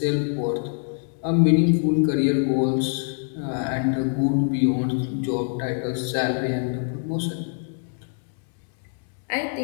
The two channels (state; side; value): silent; right; 62 dB below the other